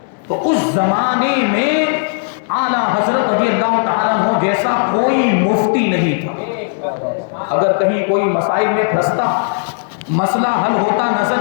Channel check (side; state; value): right; silent; digital silence